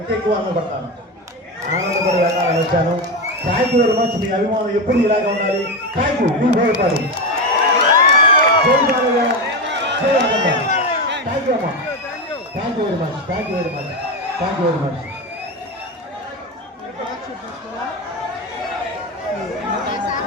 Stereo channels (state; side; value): normal; both; correlation 0.16